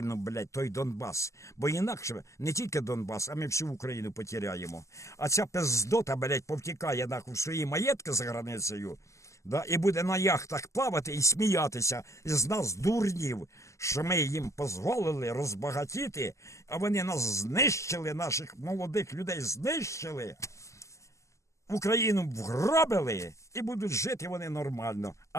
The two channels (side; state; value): right; late; 0.15 ms